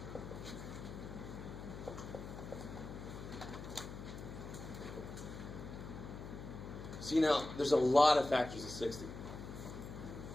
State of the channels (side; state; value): left; noise; hum, 10 dB below the sound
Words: See now, there's a lot of factors of 60.